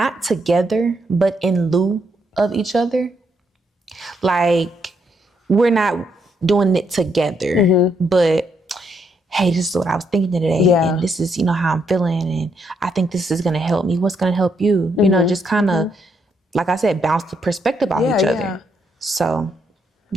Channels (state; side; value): normal; both; correlation 0.76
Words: together, but in lieu of each other. Like, we're not doing it together, but hey, this is what I was thinking today. Yeah. And this is, how I'm feeling. And I think this is going to help me. What's going to help you? Just kind of, like I said, bounce the perspective off each other. So,